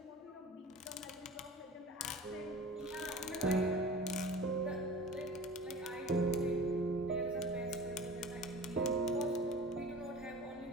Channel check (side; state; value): both; normal; correlation 0.39